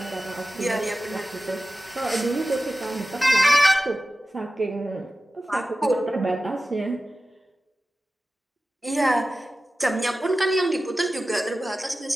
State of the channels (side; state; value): both; normal; correlation 0.95